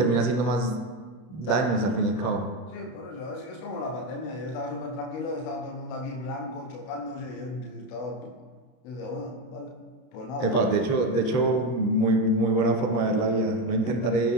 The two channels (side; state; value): right; late; 32 ms